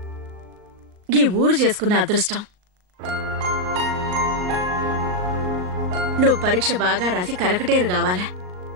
గీ ఊరు చేసుకున్న అదృష్టం. నువ్వు పరీక్ష బాగా రాసి కలకటేరు కావాలా,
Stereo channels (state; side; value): late; left; 38 ms